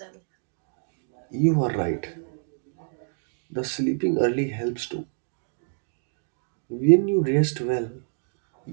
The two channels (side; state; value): left; silent; digital silence